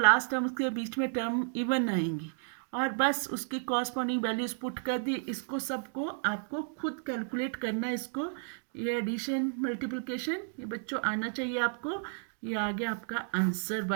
लास्ट टर्म्स के बीच में टर्म इवन आएंगी, और बस उसकी कॉरस्पॉन्डिंग वैल्यूज पुट कर दी। इसको सबको आपको खुद कैलकुलेट करना है। इसको, ये एडिशन मल्टीप्लिकेशन ये बच्चों आना चाहिए आपको। ये आ गया आपका answer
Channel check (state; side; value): silent; left; digital silence